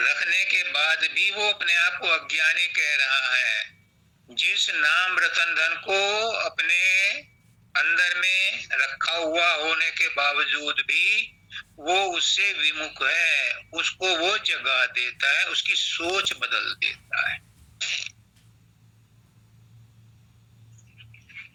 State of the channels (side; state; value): both; identical; correlation 1.00